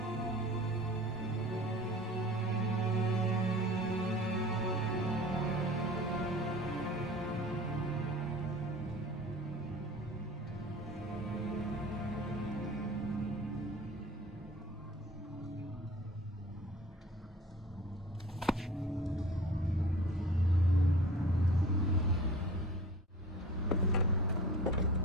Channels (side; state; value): both; normal; correlation 0.43